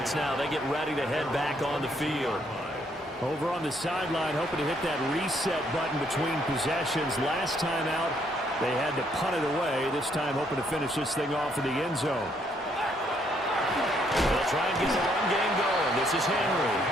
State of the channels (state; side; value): normal; both; correlation 0.70